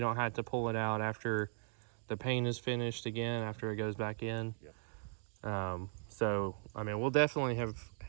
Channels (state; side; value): silent; left; digital silence